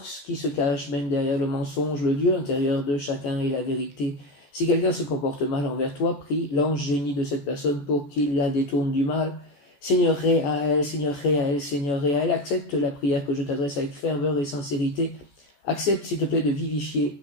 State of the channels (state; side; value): late; right; 14 ms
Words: qui se cachent même derrière le mensonge. Le Dieu intérieur de chacun est la vérité. Si quelqu'un se comporte mal envers toi, prie l'ange génie de cette personne pour qu'il la détourne du mal. Seigneur Réahel, Seigneur Réahel, Seigneur Réahel, accepte la prière que je t'adresse avec ferveur et sincérité. Accepte, s'il te plaît, de